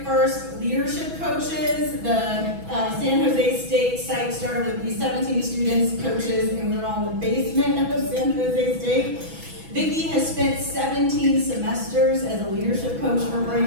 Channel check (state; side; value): late; left; 6.1 ms